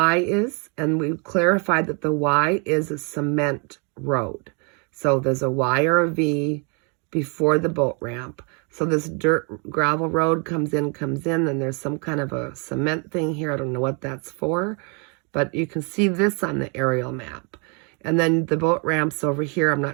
is. And we clarified that the Y is a cement road. So there's a Y or a V before the boat ramp. So this dirt gravel road comes in, and there's some kind of a cement thing here. I don't know what that's for, but you can see this on the aerial map. And then the boat ramp's over here. I'm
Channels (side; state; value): left; quieter; 35.3 dB